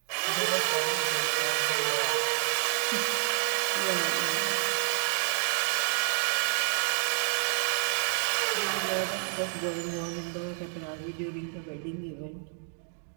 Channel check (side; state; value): left; silent; 59 dB below the other